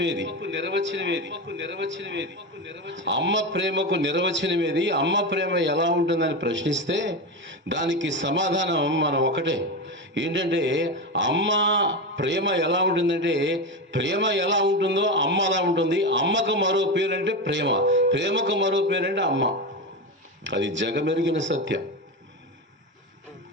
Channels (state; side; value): normal; both; correlation 0.18